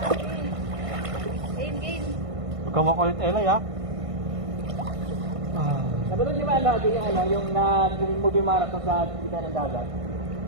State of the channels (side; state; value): left; late; 1.5 ms